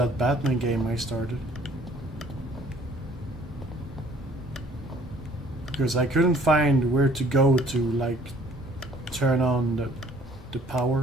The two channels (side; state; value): both; normal; correlation 0.57